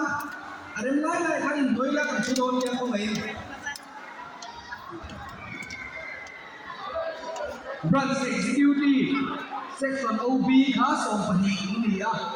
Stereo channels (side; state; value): both; identical; correlation 1.00